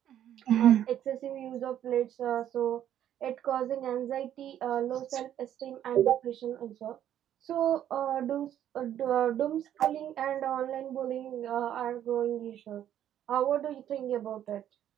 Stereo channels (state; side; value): quieter; left; 10.9 dB